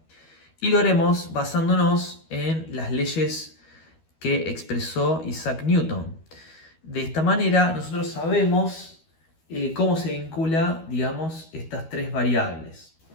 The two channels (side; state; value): right; late; 12 ms